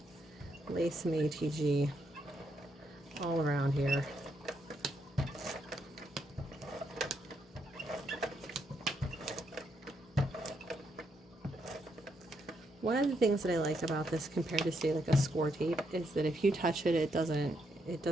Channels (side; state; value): both; normal; correlation 0.78